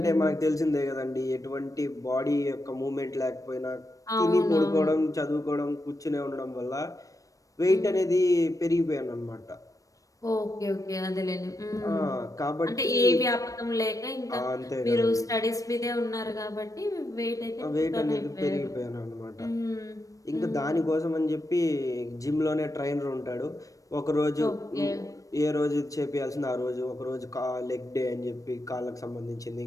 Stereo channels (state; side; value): late; right; 0.16 ms